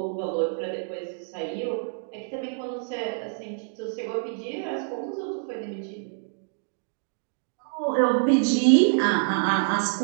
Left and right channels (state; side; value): silent; left; digital silence